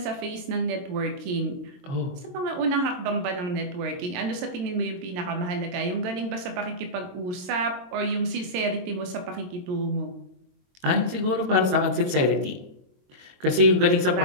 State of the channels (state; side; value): late; left; 22 ms